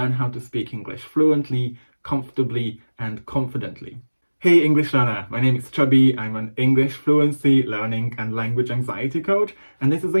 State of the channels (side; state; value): both; inverted; correlation -1.00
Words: how to speak English fluently, comfortably, and confidently. Hey English learner, my name is Chubby. I'm an English fluency, learning and language anxiety coach, and this is